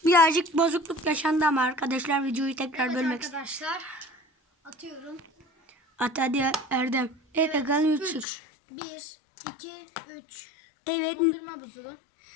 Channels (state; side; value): drops out; right; at 8.2 s